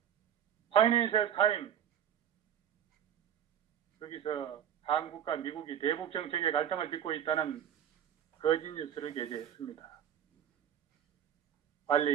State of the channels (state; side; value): quieter; left; 9.6 dB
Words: 파이낸셜 타임, 거기서 한국과 미국이 대북 정책의 갈등을 빚고 있다는 거짓 뉴스를 게재했습니다.